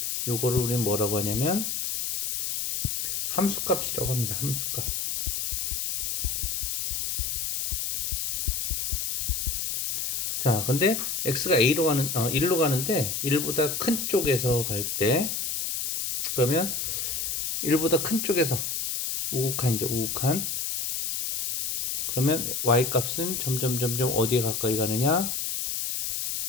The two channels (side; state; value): left; noise; hiss, 1 dB below the sound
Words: 요거를 우리는 뭐라고 하냐면 함수값이라고 합니다. 함수값. 자, 근데 x가 a로 가는 1로 가는데 1보다 큰 쪽에서 갈 때, 그러면 1보다 큰 쪽에서 우극한이죠. 우극한. 그러면 y 값은 점점 어디에 가까이 가느냐?